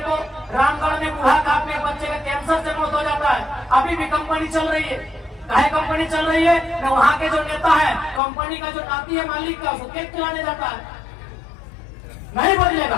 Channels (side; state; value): right; drops out; at 8.2 s